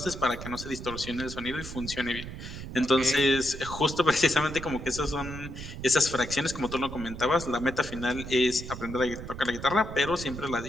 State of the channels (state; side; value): noise; right; rumble, 10 dB below the sound